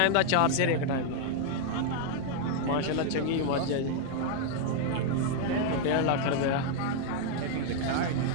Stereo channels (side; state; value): both; different; correlation 0.00